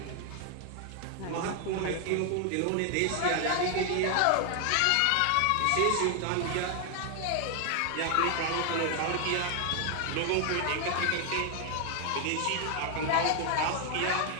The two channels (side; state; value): both; different; correlation 0.00